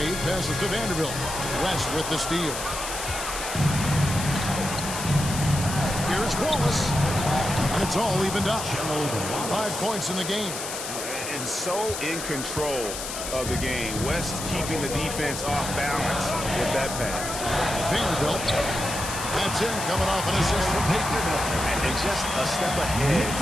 passes to Vanderbilt. West with the steal. Here's Wallace. And it's all evened up. 5 points in the game. And so in control of the game. West keeping the defense off balance with that pass. Vanderbilt. That's in, coming off an assist from Payton. And just a step ahead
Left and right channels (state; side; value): noise; left; hiss, 6 dB below the sound